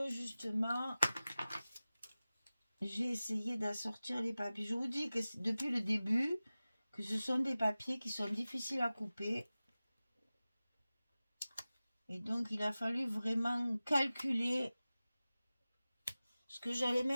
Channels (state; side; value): inverted; both; correlation -0.97